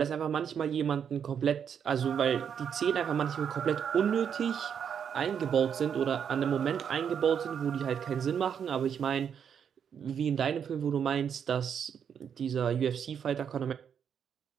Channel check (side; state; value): left; quieter; 7.8 dB